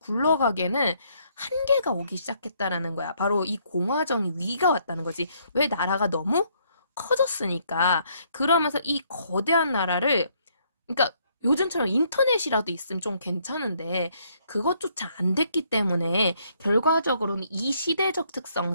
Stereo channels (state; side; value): inverted; both; correlation -0.69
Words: 한계가 오기 시작했다라는 거야. 바로 이 공화정이 위가 왔다는 거지. 왜 나라가 너무 커졌으니까. 그러면서 이 거대한 나라를, 그러니까 요즘처럼 인터넷이라도 있으면 좀 괜찮은데 그것조차 안 됐기 때문에 결과적으로는 이 시대적